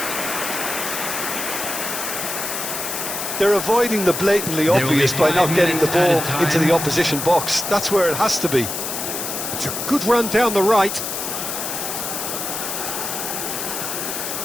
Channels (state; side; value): noise; left; hiss, 4 dB below the sound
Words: They're avoiding the blatantly obvious by not getting the ball into the opposition box. That's where it has to be. It's a good run down the right.